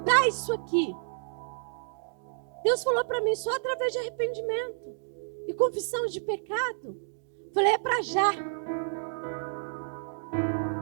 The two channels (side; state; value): left; silent; digital silence